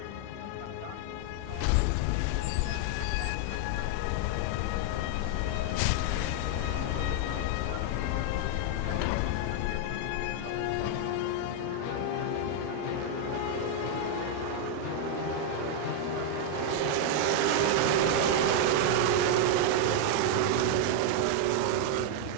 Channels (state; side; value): different; both; correlation 0.00